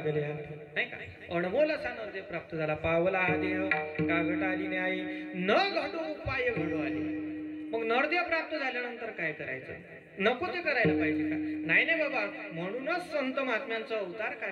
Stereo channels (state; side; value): identical; both; correlation 1.00